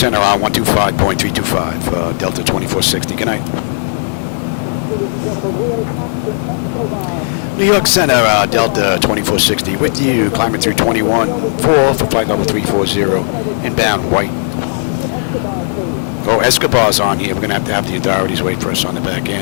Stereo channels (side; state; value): right; silent; digital silence